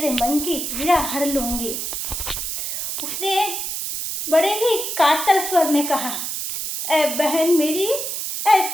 मन की पीड़ा हर लूंगी। उसने बड़े ही कातर स्वर में कहा, ऐ बहन मेरी, ऐ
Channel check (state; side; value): noise; right; hiss, 4 dB below the sound